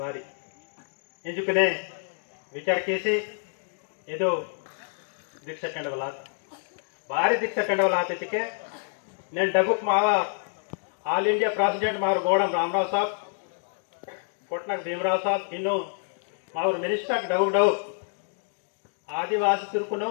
ಬಾರಿ ಎಂಜುಕನೆ ವಿಚಾರ ಕೇಸಿ ಇದು ದೀಕ್ಷಾ ಕಂಡವಲ ಬಾರಿ ದೀಕ್ಷಾ ಕಂಡವಲ ಆತಿಕೆ నేను డబుక్ మావా ఆల్ ఇండియా ప్రెసిడెంట్ మారు గోడం రామరావు సాబ్ कोटनाक भीमराव साहब इನ್ನು मावर मिनिस्टर डव आदिवासी तुर्कुनो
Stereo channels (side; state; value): right; silent; digital silence